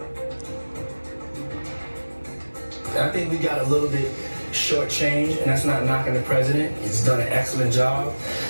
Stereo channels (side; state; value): both; inverted; correlation -1.00